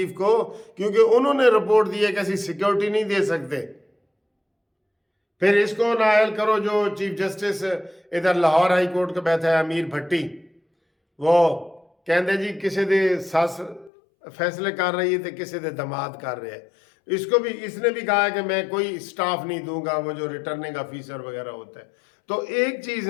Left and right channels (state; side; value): drops out; right; at 13.9 s